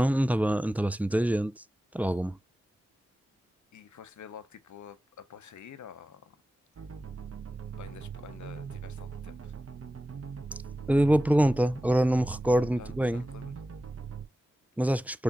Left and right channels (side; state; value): both; normal; correlation 0.95